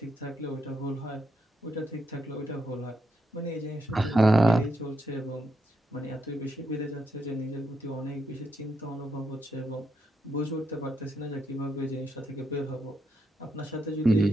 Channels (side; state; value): both; normal; correlation 0.81